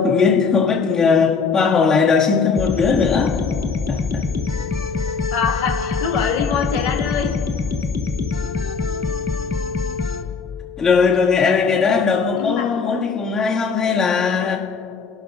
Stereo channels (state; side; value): quieter; right; 5.2 dB